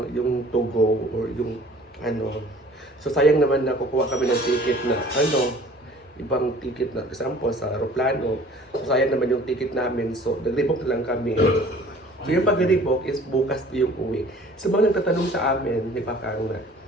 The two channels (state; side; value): normal; both; correlation 0.50